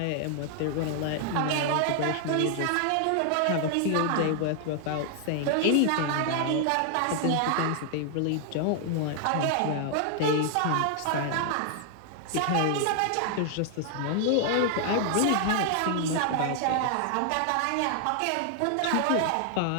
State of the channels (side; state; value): both; different; correlation 0.00